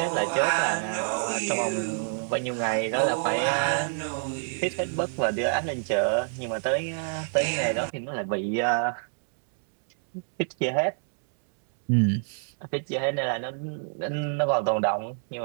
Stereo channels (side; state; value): left; silent; digital silence